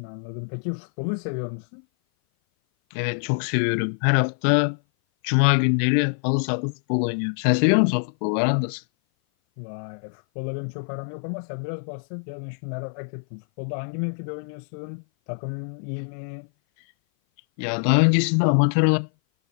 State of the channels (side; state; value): right; silent; 56 dB below the other